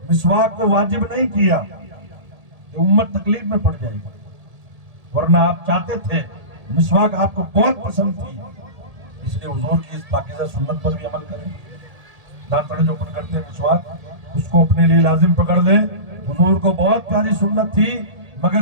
مسواک کو واجب نہیں کیا کہ امت تکلیف میں پڑ جائے گی, ورنہ آپ چاہتے تھے, مسواک آپ کو بہت پسند تھی. اس لیے حضور کی اس پاکیزہ سنت پر بھی عمل کریں. دانتڑے جو اپن کرتے ہیں مسواک, اس کو اپنے لیے لازم پکڑ لیں. حضور کو بہت پیاری سنت تھی,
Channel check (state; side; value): late; left; 1.7 ms